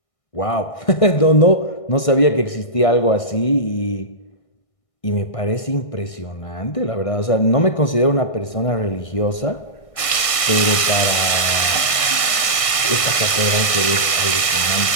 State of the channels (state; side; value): late; right; 1.6 ms